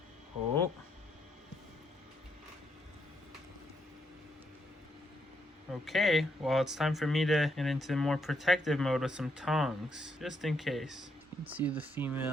Oh. Okay, well it's time for me to get into more protective mode with some tongs, just in case. You can see the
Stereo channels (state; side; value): normal; both; correlation 0.77